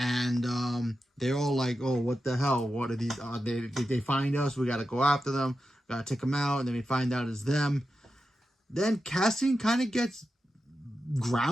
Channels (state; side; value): normal; both; correlation 0.90